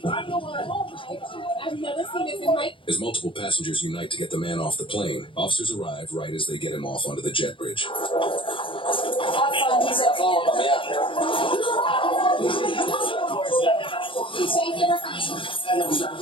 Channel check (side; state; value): right; late; 0.25 ms